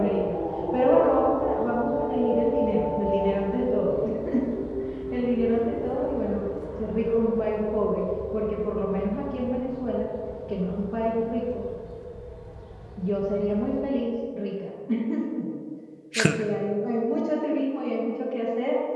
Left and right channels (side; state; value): both; identical; correlation 1.00